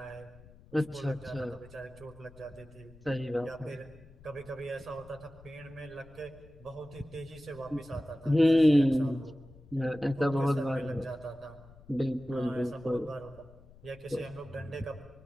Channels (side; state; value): left; noise; rumble, 22 dB below the sound